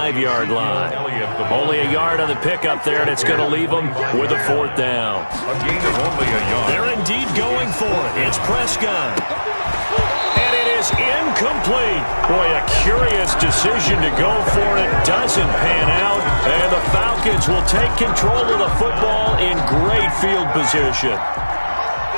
line. Only a yard on the pickup there, and it's going to leave them with a 4th down. A gain of only a yard. They're indeed going for it. It's Prescott. And it is incomplete. Boy, a curious decision to go for it. Doesn't pan out. And the Falcons will take control of the football in great field position.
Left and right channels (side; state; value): both; inverted; correlation -1.00